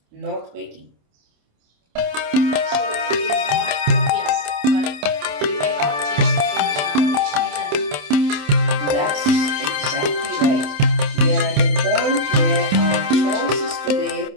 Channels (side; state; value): left; late; 27 ms